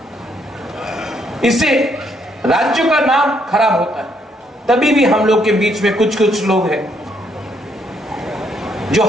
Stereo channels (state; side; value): normal; both; correlation 0.72